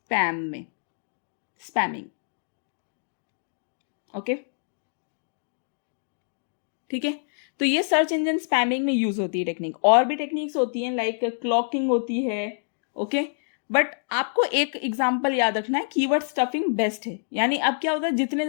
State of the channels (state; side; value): silent; right; digital silence